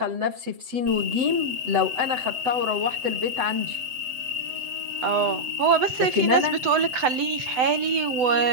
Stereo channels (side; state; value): left; late; 7.9 ms